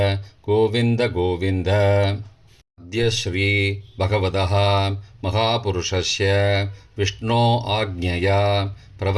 गोविन्द गोविन्द. अद्य श्री भगवतः महापुरुषस्य विष्णो आज्ञया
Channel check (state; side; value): identical; both; correlation 1.00